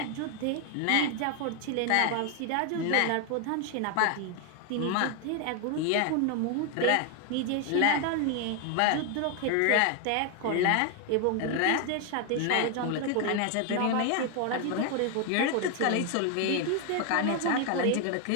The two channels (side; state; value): both; different; correlation 0.01